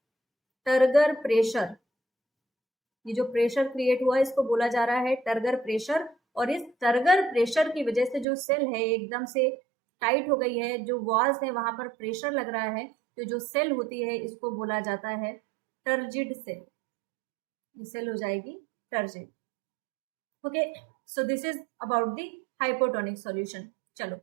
टर्गर प्रेशर। ये जो प्रेशर क्रिएट हुआ है इसको बोला जा रहा है टर्गर प्रेशर, और इस टर्गर प्रेशर की वजह से जो सेल है एकदम से टाइट हो गई है, जो वॉल्स है वहां पर प्रेशर लग रहा है, तो जो सेल होती है इसको बोला जाता है टर्जिड सेल, ये सेल हो जाएगी turgid. Okay, so this is about the hypotonic solution. चलो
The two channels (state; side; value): drops out; left; at 8.2 s